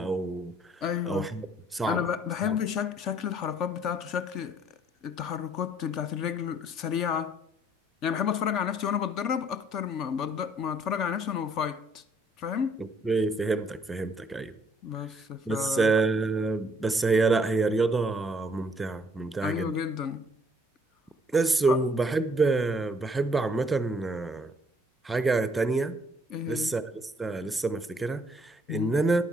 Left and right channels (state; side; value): normal; both; correlation 0.63